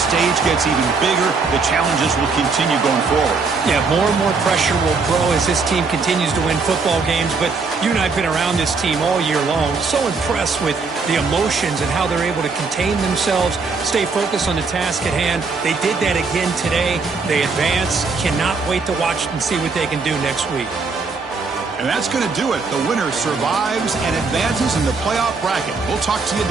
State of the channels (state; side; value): quieter; left; 4.5 dB